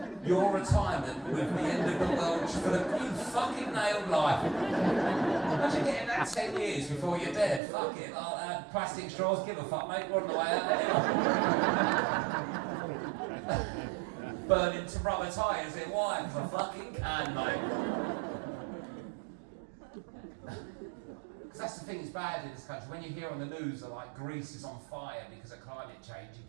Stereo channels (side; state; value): left; drops out; at 7.6 s